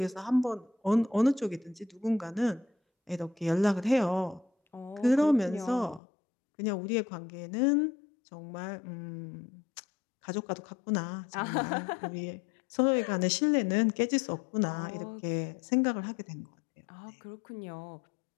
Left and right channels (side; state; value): right; drops out; at 6.0 s